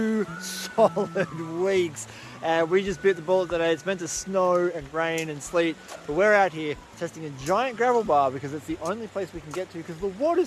solid weeks. And we just bit the bullet today. It's meant to snow and rain and sleet, but we're out here testing a giant gravel bar because it's the only place we can get to because the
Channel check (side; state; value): both; identical; correlation 1.00